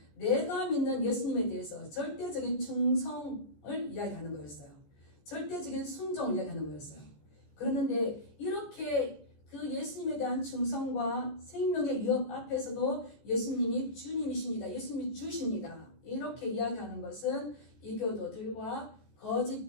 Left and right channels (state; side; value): late; right; 14 ms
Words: 내가 믿는 예수님에 대해서 절대적인 충성을 이야기하는 거였어요. 절대적인 순종을 이야기하는 거였어요. 그런데 이렇게 그 예수님에 대한 충성과 생명의 위협 앞에서도 예수님이 주님이십니다. 예수님이 주십니다. 이렇게 이야기하는 것은 이교도들과